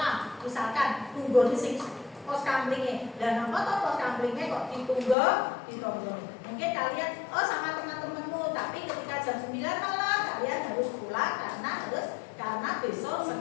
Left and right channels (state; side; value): drops out; right; at 5.2 s